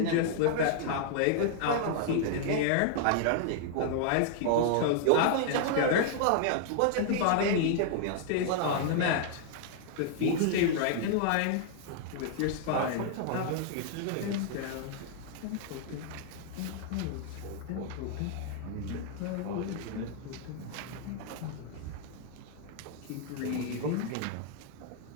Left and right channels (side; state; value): both; different; correlation -0.01